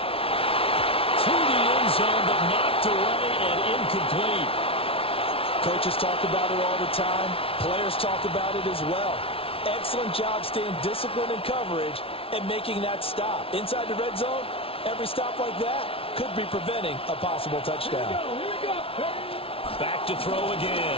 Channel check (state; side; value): late; right; 0.26 ms